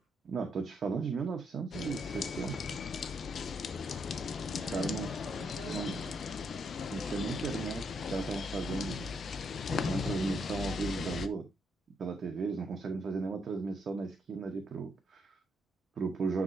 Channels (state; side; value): normal; both; correlation 0.76